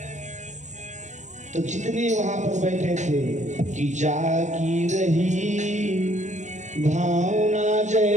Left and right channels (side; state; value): left; late; 0.35 ms